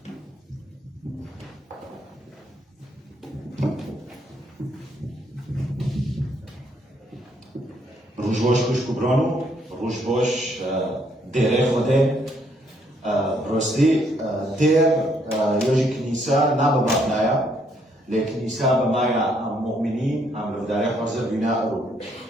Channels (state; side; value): normal; both; correlation 0.70